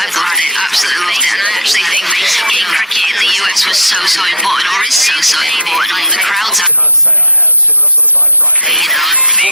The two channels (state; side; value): normal; both; correlation 0.02